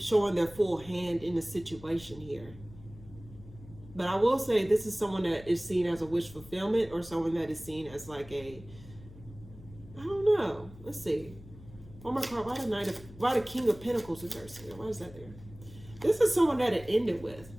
their full hand in the situation here. But I will say this is someone that is seen as a wish fulfillment, or someone that is seen as like a, I don't know. Let's see. Oh my God, why the King of Pentacles reverse here? Why is that there? This is someone that it ended with.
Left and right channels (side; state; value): left; noise; hum, 18 dB below the sound